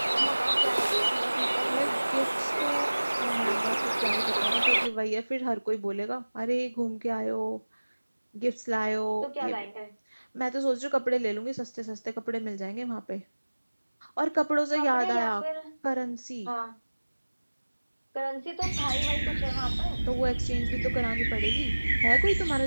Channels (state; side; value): inverted; both; correlation -1.00